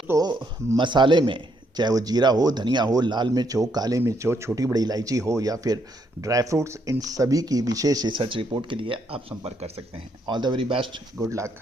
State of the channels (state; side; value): normal; both; correlation 0.74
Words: मसाले में चाहे वो जीरा हो, धनिया हो, लाल मिर्च हो, काले मिर्च हो, छोटी बड़ी इलायची हो या फिर ड्राई फ्रूट्स, इन सभी की विशेष रिसर्च रिपोर्ट के लिए आप संपर्क कर सकते हैं। All the very best, good luck,